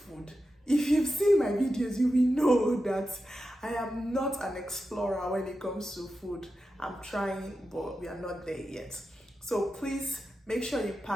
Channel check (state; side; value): normal; both; correlation 0.90